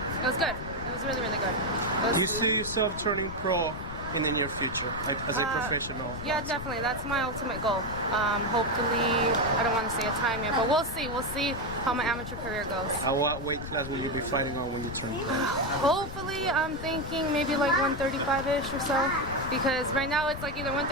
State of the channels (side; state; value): left; noise; rumble, 9 dB below the sound